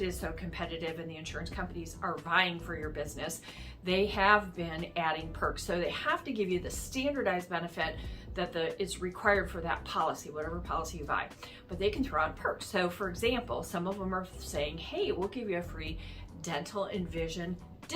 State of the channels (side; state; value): both; identical; correlation 1.00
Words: is so competitive and the insurance companies are vying for your business. They have been adding perks. So they have to give you the standardized benefit that is required for that policy, whatever policy you buy, but they can throw out perks. So for example, some of them are saying, hey, we'll give you a free dental and vision